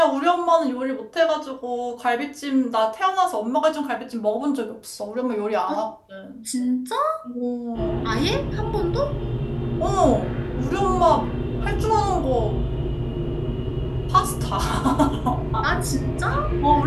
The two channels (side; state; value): both; identical; correlation 1.00